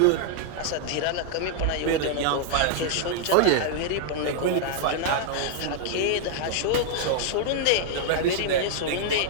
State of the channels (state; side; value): different; both; correlation 0.00